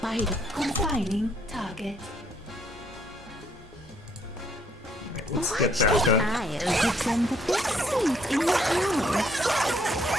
Confining target. Let's get that done. I'll give them the best seat in the house.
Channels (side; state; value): both; normal; correlation 0.67